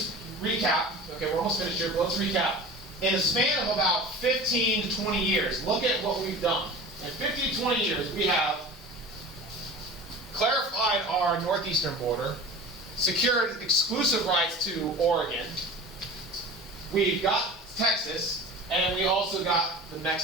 recap. Okay, we're almost finished here, but let's recap. In a span of about 15 to 20 years, look at what we've done. In 15 to 20 years, we have clarified our northeastern border. secured exclusive rights to Oregon. We got Texas, and we also got the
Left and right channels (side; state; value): both; normal; correlation 0.36